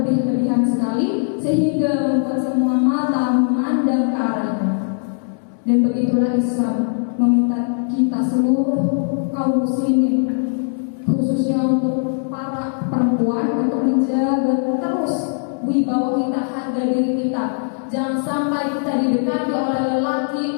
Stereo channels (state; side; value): silent; right; digital silence